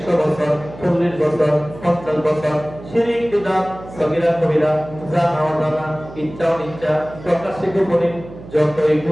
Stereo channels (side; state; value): right; noise; hum, 16 dB below the sound